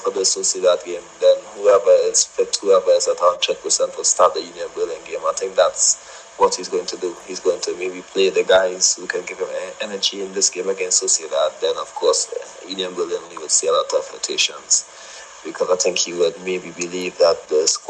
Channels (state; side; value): identical; both; correlation 1.00